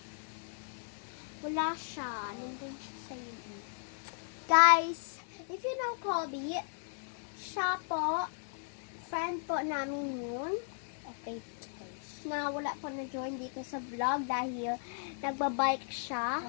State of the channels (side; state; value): right; silent; 54 dB below the other